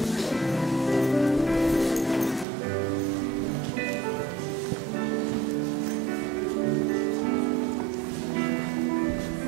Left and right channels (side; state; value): left; drops out; at 2.5 s